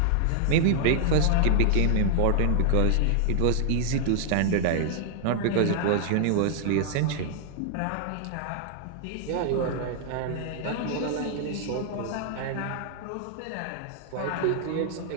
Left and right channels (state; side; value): different; both; correlation -0.01